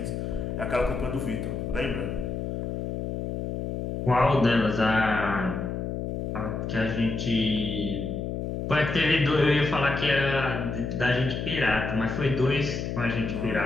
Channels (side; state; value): left; noise; hum, 4 dB below the sound